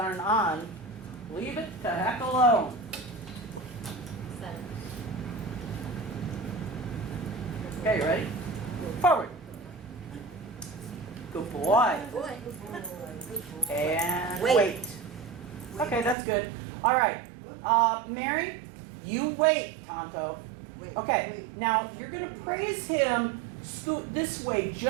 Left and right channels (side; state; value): left; drops out; at 16.2 s